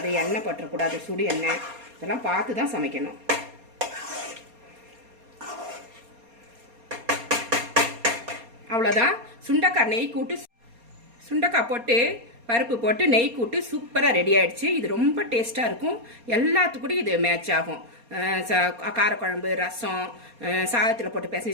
எண்ணெய் பற்றக்கூடாது, சுடு எண்ணெய், இதெல்லாம் பார்த்து தான் சமைக்கணும். அவ்வளோதான். சுண்டைக்காய் நெய் கூட்டு, சுண்டைக்காய் போட்டு பருப்பு போட்டு நெய் கூட்டு சூப்பராக ரெடி ஆகிடுச்சு. இது ரொம்ப டேஸ்ட்டாக இருக்கும். எல்லாத்துக்கூடையும் இது மேட்ச் ஆகும். காரக்குழம்பு, ரசம், சாதத்தில் போட்டு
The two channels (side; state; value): left; late; 4.3 ms